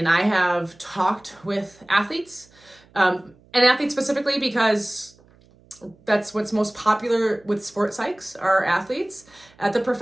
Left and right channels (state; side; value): noise; right; hum, 29 dB below the sound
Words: I have talked with athletes, and athletes specifically because that's what's most popular with sports psychs, are athletes at the